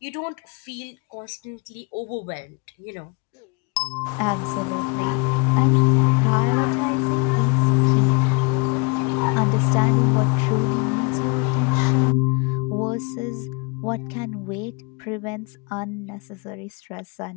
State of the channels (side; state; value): right; quieter; 32.8 dB